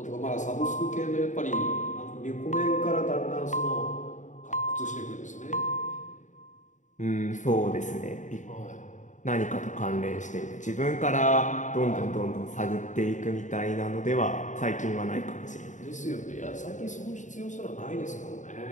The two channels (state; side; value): late; right; 0.36 ms